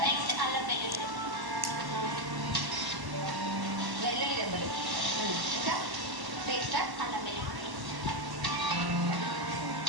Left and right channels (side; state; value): left; late; 1.1 ms